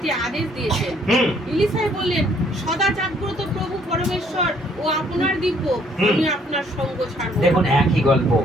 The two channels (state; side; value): normal; both; correlation 0.64